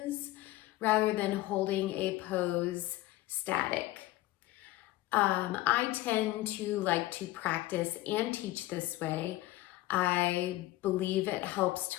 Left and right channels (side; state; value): right; quieter; 17.1 dB